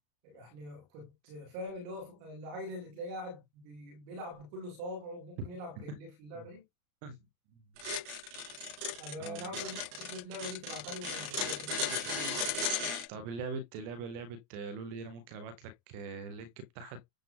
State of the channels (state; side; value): late; left; 34 ms